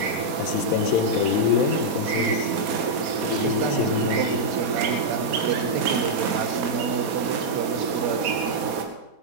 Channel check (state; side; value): late; left; 4.2 ms